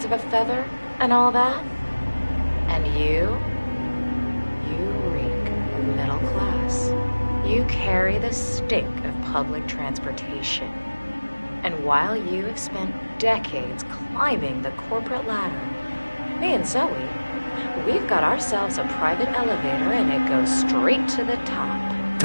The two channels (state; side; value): inverted; both; correlation -1.00